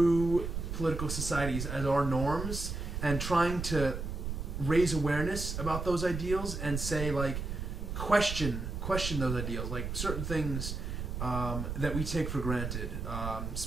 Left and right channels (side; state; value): right; noise; rumble, 4 dB below the sound